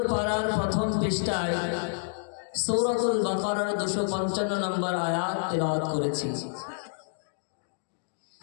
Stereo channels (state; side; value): silent; right; digital silence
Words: পারার প্রথম পৃষ্ঠায় সূরাতুল বাকারার 255 নম্বর আয়াত তেলাওয়াত করেছি।